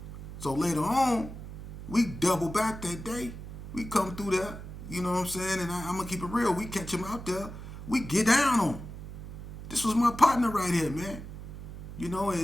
So later on, we double back that day. We come through there, you know what I'm saying? And I'm going to keep it real. We catch him out there. We get down on him. This was my partner right here, man.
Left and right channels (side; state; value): right; noise; hum, 11 dB below the sound